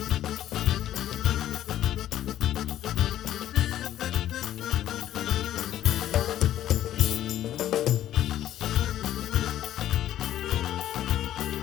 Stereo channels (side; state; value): right; quieter; 12.2 dB